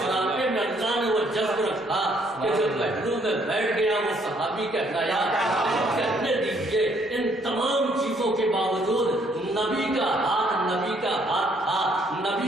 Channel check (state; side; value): normal; both; correlation 0.67